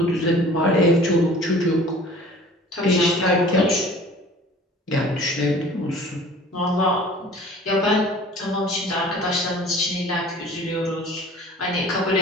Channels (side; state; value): both; normal; correlation 0.47